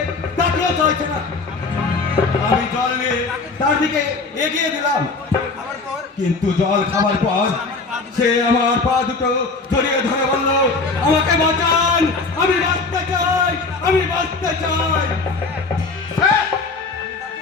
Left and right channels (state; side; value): quieter; right; 4.0 dB